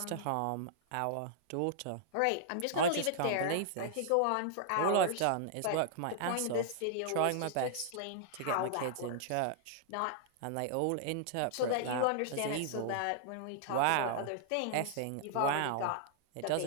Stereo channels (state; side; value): different; both; correlation -0.01